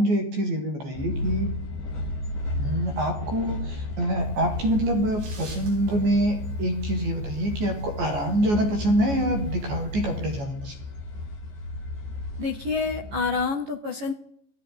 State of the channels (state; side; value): late; left; 14 ms